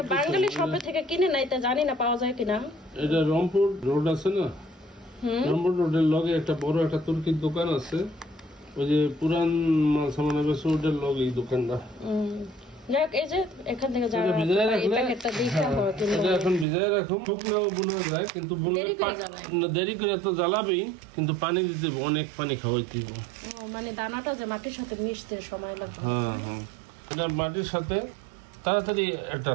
বাঙালি শপে থেকে কিনে নাই, তা জানি না পাওয়া যায় কিনা। এটা রংপুর রোড আছে না, রংপুর রোডের লগে একটা বড় একটা তুর্কির দোকান আছে, ওই যে পুরান মাল সামান রোডের লগে এই দোকানটা। যাক, এই যে এখান থেকে যারা এই প্যাকেটটা দিতে হয় এটা এখন ভিজায় রাখুন। শুকনো বোনা যায় কিন্তু দেরি করে তো জ্বালাবেই, কিন্তু পানি দিতে অনেক পানি খাওয়াইতে হবে। ও মানে দানাটা যে মাটির সাথে মিশতে সময় লাগবে। হ্যাঁ হ্যাঁ, এটা মাটির সাথে তাড়াতাড়ি এটা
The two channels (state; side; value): drops out; left; at 16.7 s